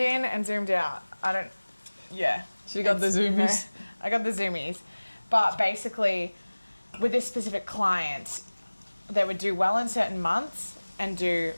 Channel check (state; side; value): inverted; both; correlation -1.00